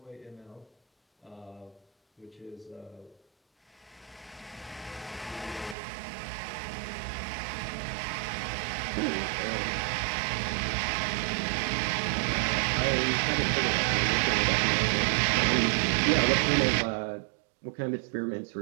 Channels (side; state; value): left; drops out; at 5.8 s